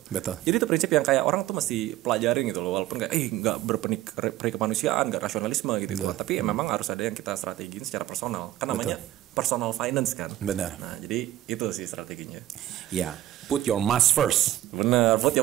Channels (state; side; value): quieter; left; 14.4 dB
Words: Jadi itu prinsip yang kayak orang tuh mesti pelajarin gitu loh. Walaupun kayak nggak berperi kemanusiaan, nggak rasionalisme gitu. Tapi memang harus ada yang kita strategiin secara personal. Kan namanya personal finance kan. Nah jadi itu sih strateginya. Put your mask first. Bener, put